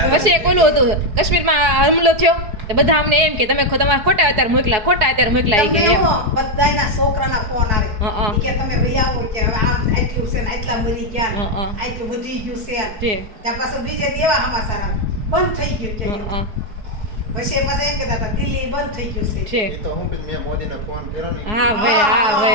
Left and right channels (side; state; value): left; late; 4.8 ms